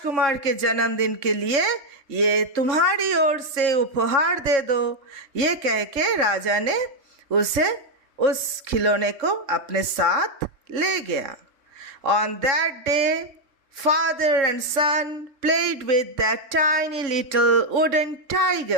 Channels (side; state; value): left; late; 3.6 ms